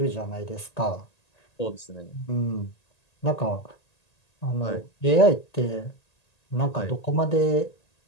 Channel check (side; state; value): right; late; 1.8 ms